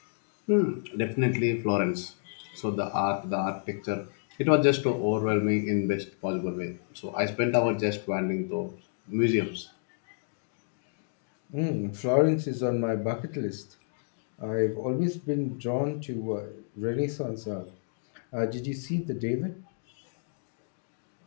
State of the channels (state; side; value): silent; right; digital silence